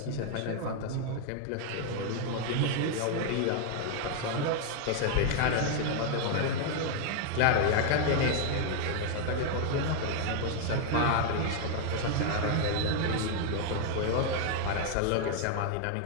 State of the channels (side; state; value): both; different; correlation 0.00